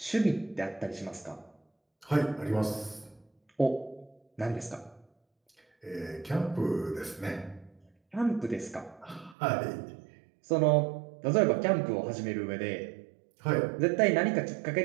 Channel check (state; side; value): drops out; left; at 9.3 s